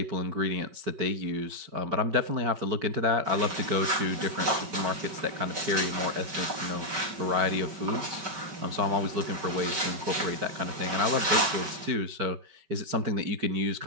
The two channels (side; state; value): left; late; 5.2 ms